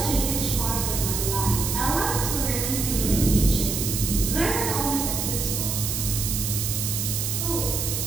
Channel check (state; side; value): noise; right; hiss, 2 dB below the sound